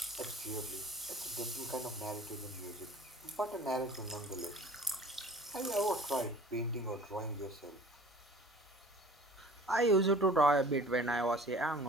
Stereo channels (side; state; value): both; normal; correlation 0.47